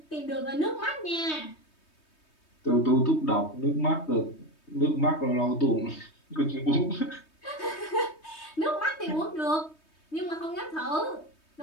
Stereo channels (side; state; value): right; late; 3.2 ms